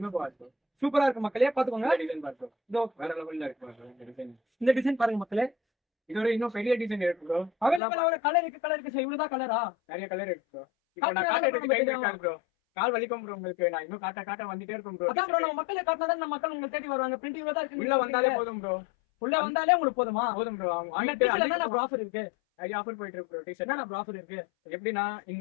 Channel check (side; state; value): right; drops out; at 7.8 s